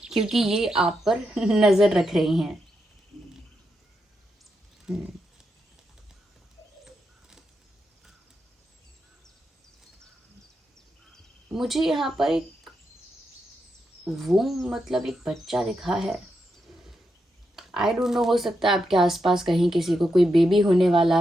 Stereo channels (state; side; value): normal; both; correlation 0.84